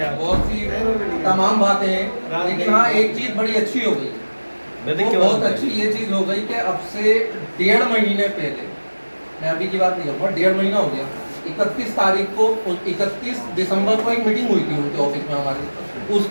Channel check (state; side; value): inverted; both; correlation -1.00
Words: बहुत सी तमाम बातें हैं, लेकिन हाँ एक चीज़ बड़ी अच्छी हो गई, वो बहुत अच्छी ये चीज़ हो गई कि अब से 1.5 महीने पहले, मैं अभी की बात नहीं करूँगा, 1.5 महीना हो गया, 31 तारीख को 31 दिसंबर को एक मीटिंग हुई थी उनके ऑफिस में हमारी।